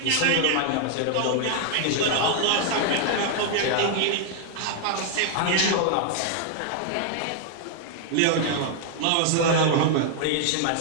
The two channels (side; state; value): both; different; correlation 0.00